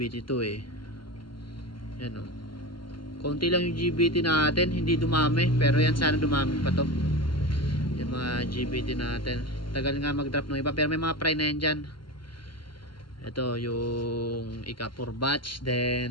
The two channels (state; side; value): late; right; 0.72 ms